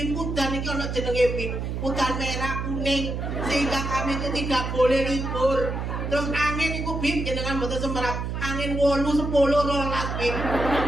udan iki ono jenenge Bim, udan merah kuning sehingga kami itu tidak boleh libur. Terus angin itu Bim jenengan mboten semerap, angin 8, 10, 12 Bim.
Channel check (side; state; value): right; noise; hum, 3 dB below the sound